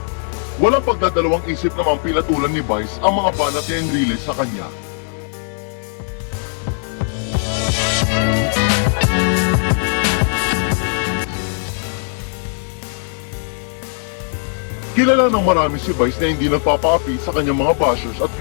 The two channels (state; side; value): silent; right; 65 dB below the other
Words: Wala pagdadalawang isip namang pinatulan ni Vice ang mga banat ni Enrile sa kanya. Kilala ng marami si Vice na hindi nagpapaapi sa kanyang mga bashers at